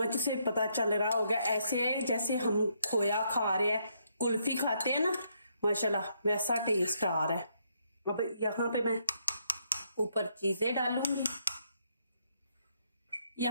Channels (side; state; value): both; inverted; correlation -0.74